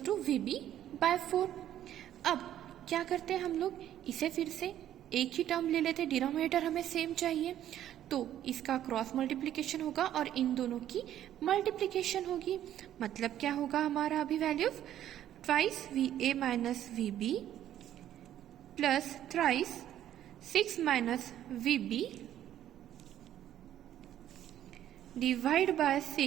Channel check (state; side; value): quieter; left; 11.6 dB